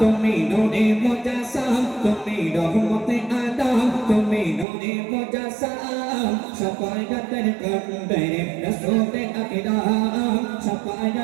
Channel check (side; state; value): left; drops out; at 4.7 s